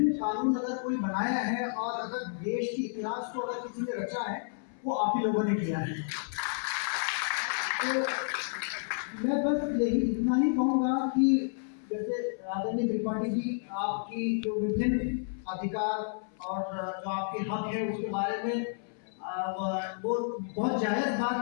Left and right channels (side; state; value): right; silent; 57 dB below the other